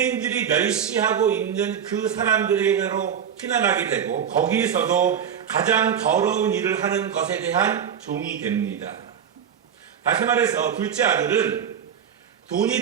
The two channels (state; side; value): quieter; left; 8.2 dB